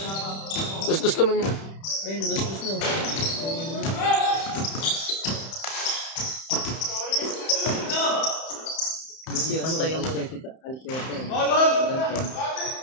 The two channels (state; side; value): late; right; 31 ms